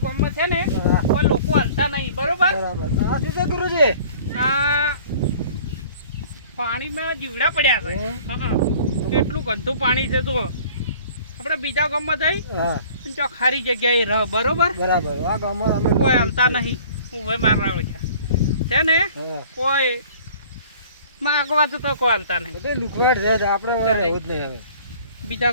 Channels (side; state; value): both; inverted; correlation -0.49